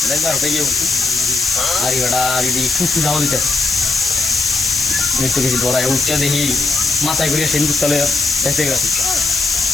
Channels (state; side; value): noise; left; hiss, 2 dB below the sound